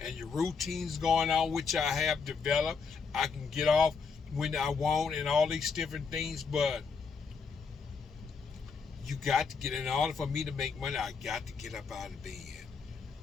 and your routines going on, which I have developed, I can get off when I want and all these different things. But you got to get, in order for me to make money, I got to get up out of bed.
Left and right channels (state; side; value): quieter; right; 5.4 dB